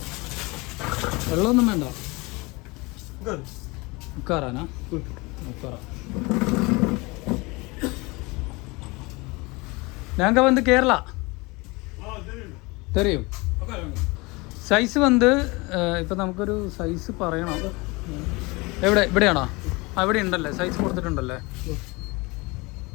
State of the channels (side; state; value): right; quieter; 25.1 dB